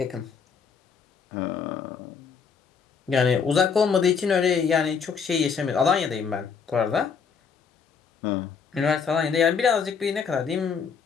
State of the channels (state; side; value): quieter; right; 6.1 dB